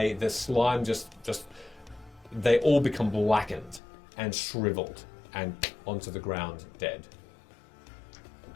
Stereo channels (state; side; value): drops out; right; at 3.8 s